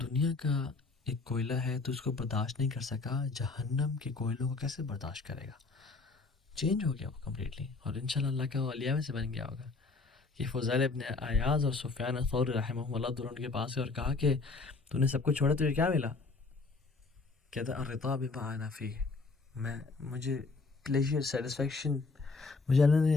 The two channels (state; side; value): quieter; right; 3.9 dB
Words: دنیا کا ایک کوئلہ ہے تو اس کو برداشت نہیں کر سکا, جہنم کے کوئلوں کو کیسے برداشت کرے گا. چینج ہو گیا وہ کمپلیٹلی, اور انشاءاللہ اللہ کا اولیاء میں سے بن گیا ہوگا. کہ فضیل ابن عیاض اور سفیان الثوری رحمہ اللہ دونوں کے پاس اور کہا کہ تو نے سب کچھ چھوڑا, تجھے کیا ملا؟ کہتا الرضا بما انا فیہ, مجھے پلیجر, سیٹسفیکشن, مجھے اللہ